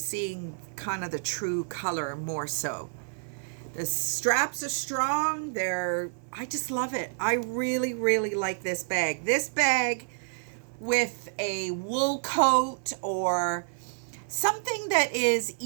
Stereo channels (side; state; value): left; silent; 59 dB below the other